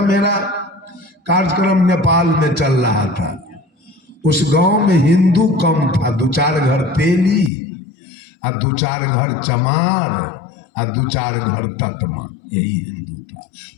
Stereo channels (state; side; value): drops out; right; at 7.5 s